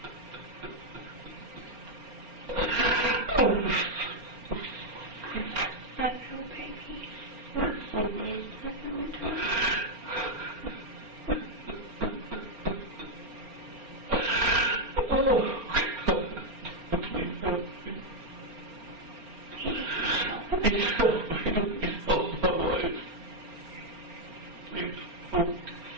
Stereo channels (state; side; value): late; left; 4.4 ms